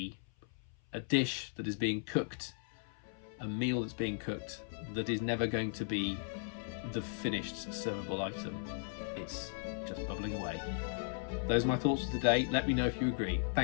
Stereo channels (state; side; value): silent; right; 53 dB below the other